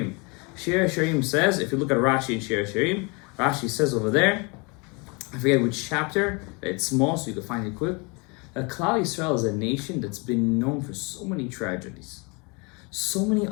Shir HaShirim says, if you look at Rashi in Shir HaShirim, Rashi says over there, I forget which chapter, it's small so you can find it quick, that Klal Yisrael is a nation that's been known for so many tragedies, so many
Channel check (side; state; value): right; quieter; 30.3 dB